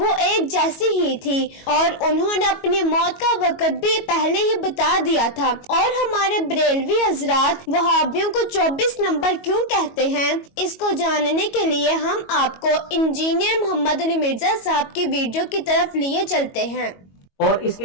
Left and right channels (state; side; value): late; right; 22 ms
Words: एक जैसी ही थी, और उन्होंने अपनी मौत का वक्त भी पहले ही बता दिया था। और हमारे बरेलवी हजरात वहाबियों को 24 नंबर क्यों कहते हैं, इसको जानने के लिए हम आपको इंजीनियर मोहम्मद अली मिर्जा साहब की वीडियो की तरफ लिए चलते हैं। और इसके